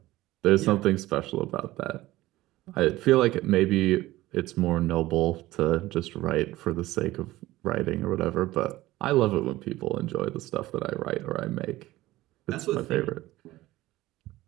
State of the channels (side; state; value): left; quieter; 17.3 dB